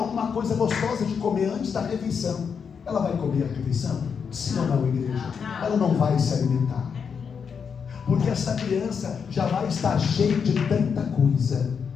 coisa gostosa de comer antes da refeição, ela vai comer a refeição? Sim ou não, igreja? Ela não vai se alimentar, porque essa criança já vai estar cheia de tanta coisa,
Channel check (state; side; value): quieter; right; 6.5 dB